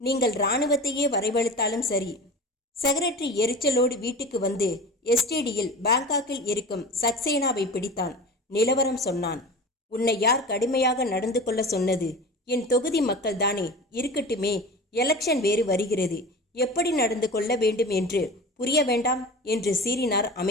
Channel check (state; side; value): normal; both; correlation 0.34